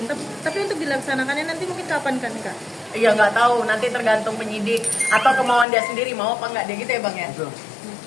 Tapi untuk dilaksanakannya nanti mungkin kapan kan kak? Iya nggak tahu, nanti tergantung penyidik atau kemauan dia sendiri mau apa nggak dia gitu ya bang ya.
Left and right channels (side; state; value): right; drops out; at 5.7 s